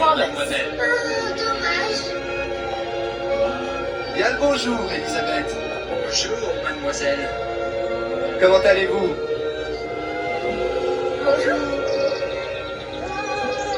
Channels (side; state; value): both; identical; correlation 1.00